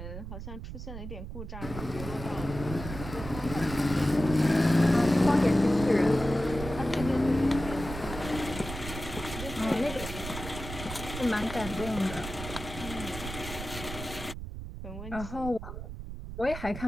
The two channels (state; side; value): noise; right; rumble, 9 dB below the sound